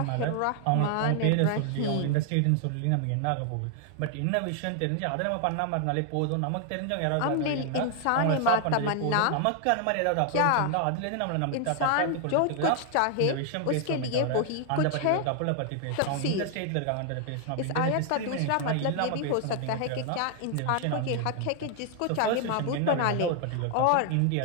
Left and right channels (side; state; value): both; different; correlation 0.00